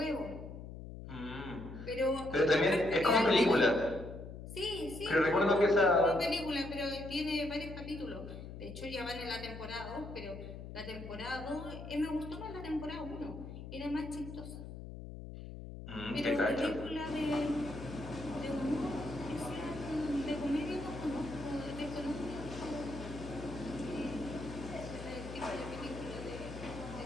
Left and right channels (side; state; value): left; noise; hum, 10 dB below the sound